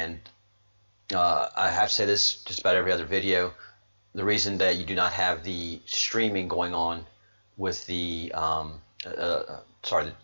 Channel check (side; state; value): both; inverted; correlation -1.00